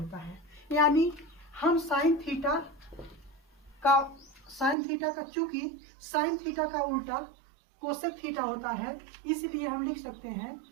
है। यानी हम साइन थीटा का चूंकि साइन थीटा का उल्टा कोसेक थीटा होता है, इसलिए हम लिख सकते हैं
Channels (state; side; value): drops out; left; at 4.8 s